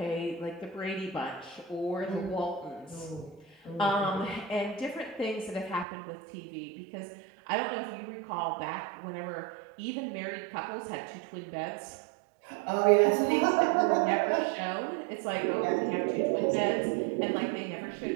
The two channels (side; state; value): left; drops out; at 5.9 s